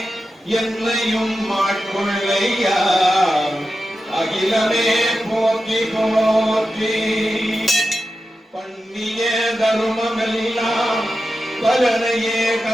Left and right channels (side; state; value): both; normal; correlation 0.91